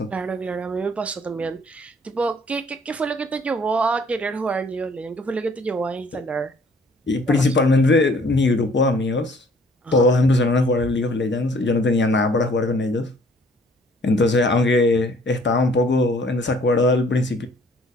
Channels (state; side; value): normal; both; correlation 0.58